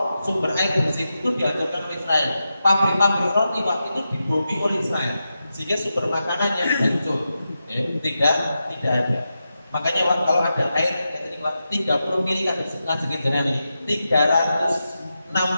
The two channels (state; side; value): inverted; both; correlation -0.89